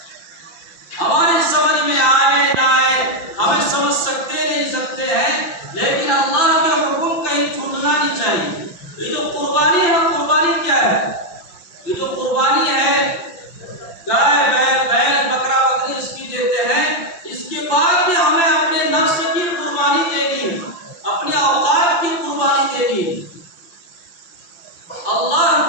ہماری سمجھ میں آئے نہ آئے، ہمیں سمجھ سکتے نہیں سکتے ہیں، لیکن اللہ کے حکم کہیں چھوٹنا نہیں چاہیے۔ یہ جو قربانی ہے، قربانی کیا ہے؟ یہ جو قربانی ہے، گائے بیل بکرا بکری اس کی دیتے ہیں، اس کے بعد بھی ہمیں اپنے نفس کی قربانی دینی ہے، اپنے اوقات کی قربانی دینی ہے۔ اللہ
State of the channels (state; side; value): late; right; 5.8 ms